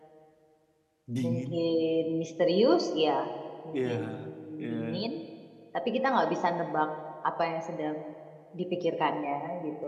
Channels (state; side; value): identical; both; correlation 1.00